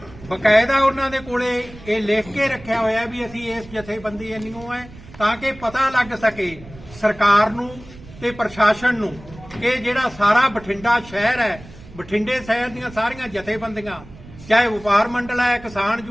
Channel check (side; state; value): right; noise; rumble, 19 dB below the sound